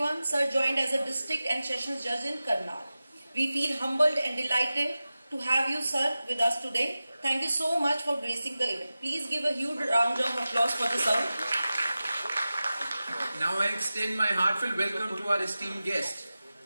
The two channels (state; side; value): inverted; both; correlation -0.95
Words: Sir joined as a District and Sessions Judge in Karnal. We feel humbled and delighted to have you, sir, with us today. Thank you so much for gracing the event. Please give a huge round of applause for the sir. Now I extend my heartfelt welcome to our esteemed guest,